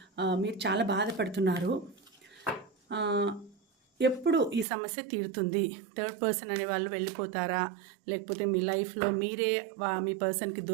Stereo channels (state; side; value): drops out; left; at 4.7 s